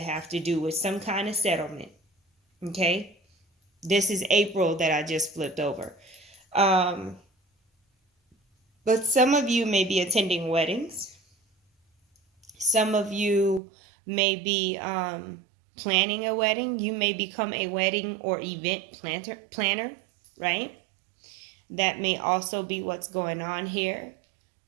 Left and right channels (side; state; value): left; drops out; at 13.6 s